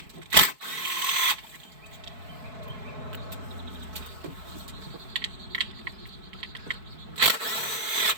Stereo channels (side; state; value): left; late; 4.6 ms